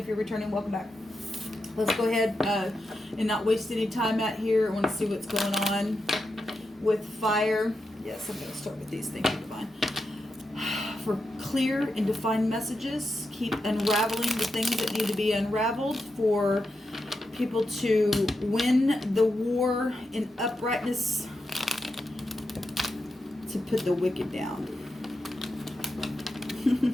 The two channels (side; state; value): both; normal; correlation 0.87